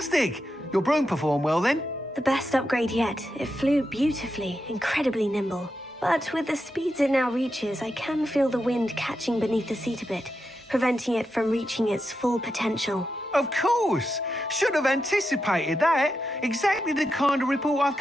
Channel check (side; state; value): both; normal; correlation 0.87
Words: Your broom performed well then? The best upgrade yet. It flew beautifully, incredibly nimble. But with the speeds it now reaches, I can feel the wind catching beneath the seat a bit, preventing it from reaching its full potential. Of course! Should have anticipated that. Exactly the kind of report I've